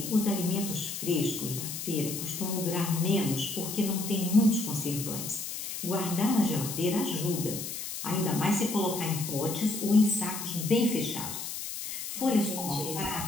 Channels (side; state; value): left; noise; hiss, 6 dB below the sound